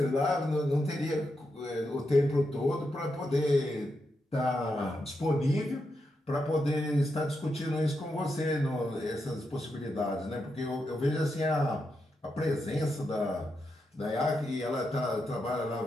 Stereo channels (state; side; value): normal; both; correlation 0.85